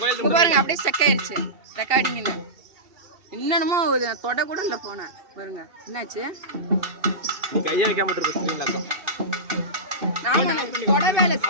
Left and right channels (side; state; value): left; late; 2.7 ms